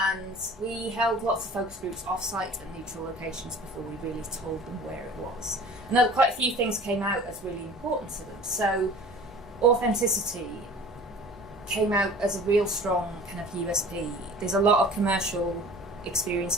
we held lots of focus groups off-site and neutral locations before we really told them where it was. And quite a few things came out as really important to them. So authenticity came out as a real strong kind of USP. There's a lot of commercial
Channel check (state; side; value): normal; both; correlation 0.44